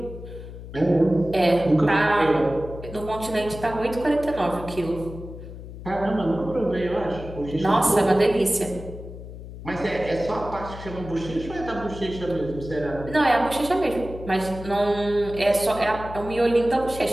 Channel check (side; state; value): left; noise; hum, 12 dB below the sound